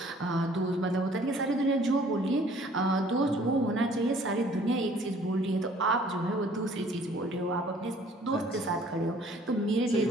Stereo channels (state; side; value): normal; both; correlation 0.56